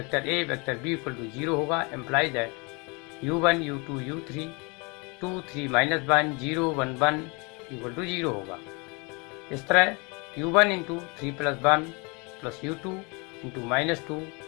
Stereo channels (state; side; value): quieter; right; 30.1 dB